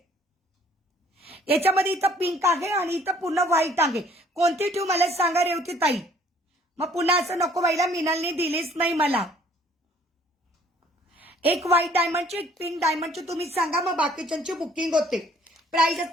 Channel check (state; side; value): normal; both; correlation 0.58